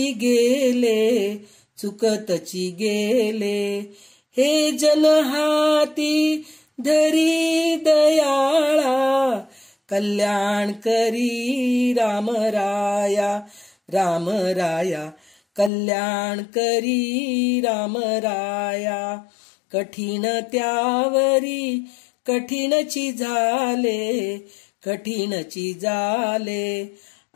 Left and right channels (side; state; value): right; drops out; at 15.7 s